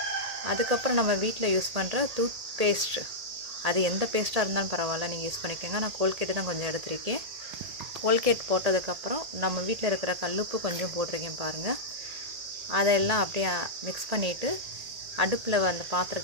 அதுக்கப்புறம் நம்ம வீட்டில் யூஸ் பண்ணுற டூத் பேஸ்ட், அது எந்த பேஸ்ட்டாக இருந்தாலும் பரவாயில்ல, நீங்கள் யூஸ் பண்ணிக்கோங்க. நான் கோல்கேட்டு தான் கொஞ்சம் எடுத்திருக்கேன். கோல்கேட் போட்டதுக்கப்புறம் நம்ம வீட்டில் இருக்கிற கல்லுப்பு கொஞ்சம் போட்டிருக்கேன் பாருங்கள். அதெல்லாம் அப்படியே மிக்ஸ் பண்ணிவிட்டு அடுப்பில் அந்த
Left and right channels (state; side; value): late; left; 1.8 ms